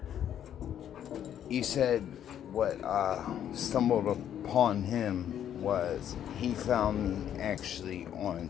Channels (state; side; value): quieter; right; 10.0 dB